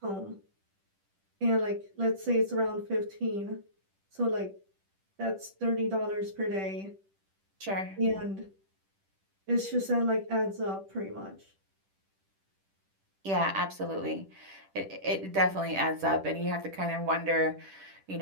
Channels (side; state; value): left; late; 10 ms